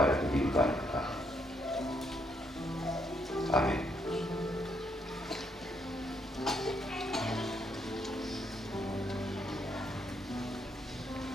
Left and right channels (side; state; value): both; normal; correlation 0.74